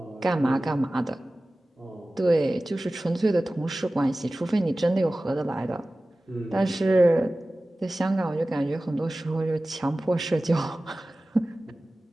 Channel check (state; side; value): normal; both; correlation 0.97